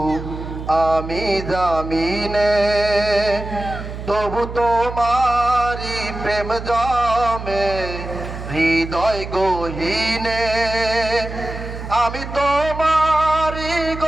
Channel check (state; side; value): noise; right; hum, 9 dB below the sound